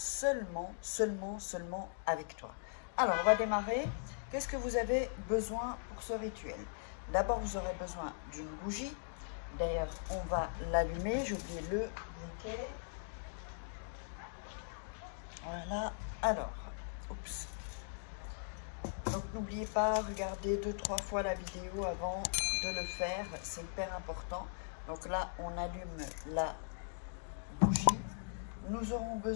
avec toi. Alors on va démarrer. Qu'est-ce que vous avez besoin pour ce rituel? D'abord vous aurez besoin d'une bougie. D'ailleurs, on va l'allumer. J'ai oublié le briquet. Voilà. Alors, oups. Donc, n'oubliez pas, regardez 2-3 fois la vidéo avant de le faire. C'est hyper important. Donc là, on allume la bougie. Nous aurons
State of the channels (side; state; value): right; silent; digital silence